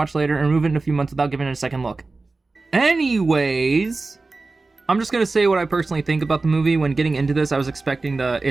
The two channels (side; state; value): left; quieter; 3.6 dB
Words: later and remove it in a few months without giving it a second look. Anyways, I'm just going to say what I personally think about the movie. When getting into this, I was expecting the